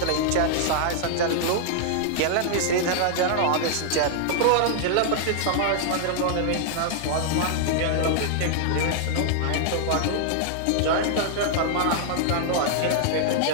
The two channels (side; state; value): both; different; correlation -0.01